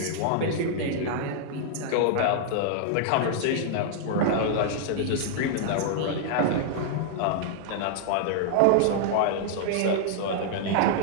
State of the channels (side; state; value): both; different; correlation -0.01